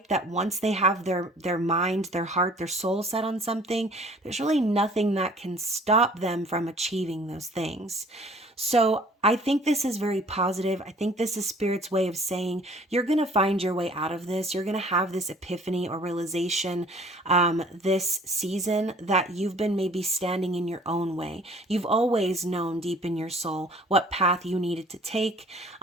that once they have their mind, their heart, their soul set on something, there's really nothing that can stop them from achieving those things. So I think this is very positive. I think this is Spirit's way of saying you're going to find your way out of this. You're going to have this epiphany or realization this season that you've been maybe standing in your own way. You've always known deep in your soul what path you needed to take.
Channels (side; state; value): both; normal; correlation 0.53